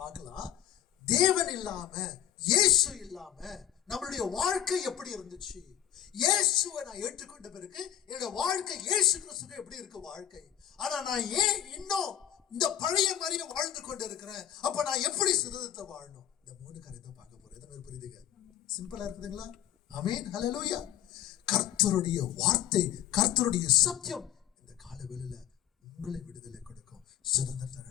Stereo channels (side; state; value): right; quieter; 11.1 dB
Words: பார்க்கலாம். தேவன் இல்லாம, இயேசு இல்லாம நம்மளுடைய வாழ்க்கை எப்படி இருந்துச்சு, இயேசுவை நான் ஏற்றுக்கொண்ட பிறகு என்னோட வாழ்க்கை இயேசு கிறிஸ்துக்கு எப்படி இருக்கு வாழ்க்கை, ஆனா நான் ஏன் இன்னும் இந்த பழைய மாதிரியே வாழ்ந்து கொண்டு இருக்கிறேன், அப்ப நான் எப்படி சுதந்திரத்தை வாழணும், இந்த 3 காரியத்தை பார்க்க போறேன். எத்தனை பேர் புரியுதுங்க? சிம்பிளா இருக்குதுங்களா? ஆமென். ஹல்லேலூயா. கர்த்தருடைய வார்த்தை, கர்த்தருடைய சத்தியம் இந்த காலவெளியில உங்களை விடுதலை கொடுக்கும், சுதந்திரத்தை